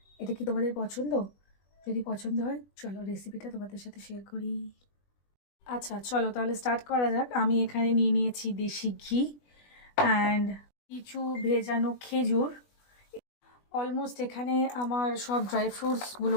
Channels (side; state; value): right; late; 20 ms